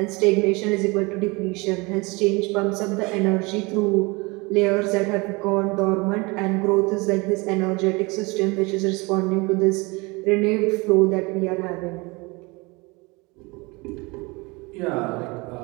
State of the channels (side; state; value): left; quieter; 26.0 dB